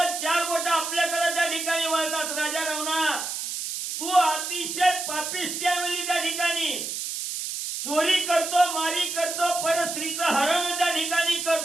4 बोट आपल्याकडे त्या ठिकाणी वळतात. राजा रावणा, तू अतिशय पापिष्ट आहे म्हणजे त्या ठिकाणी चोरी करतो, मारी करतो, परस्त्रीचं हरण त्या ठिकाणी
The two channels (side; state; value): right; noise; hiss, 4 dB below the sound